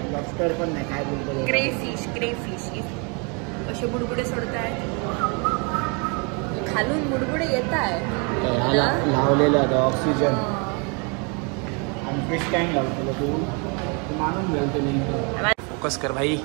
पण नाही. काय बोलतो क्रेफिश असे बुडबुडे सोडताय खालून, बुडबुडे येत आहे. लावलेलं आहे ऑक्सिजन आणि फिश टँक लावतो. तू मानून घ्याल फोकस कर भाई.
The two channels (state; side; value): quieter; left; 33.7 dB